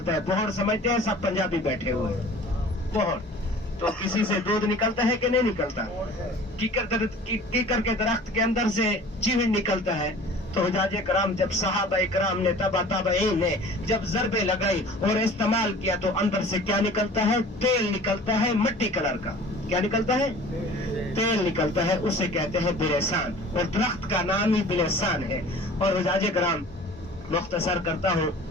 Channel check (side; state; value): both; normal; correlation 0.45